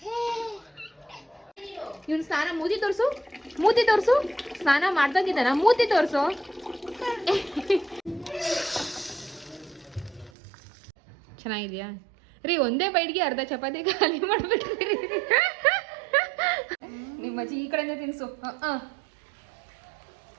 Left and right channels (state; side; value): drops out; left; at 10.3 s